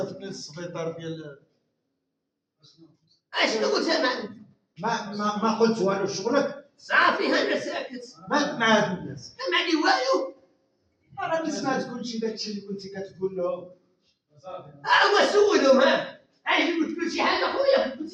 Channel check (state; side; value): identical; both; correlation 1.00